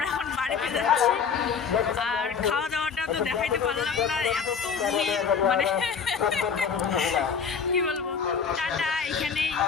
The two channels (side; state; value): right; quieter; 6.4 dB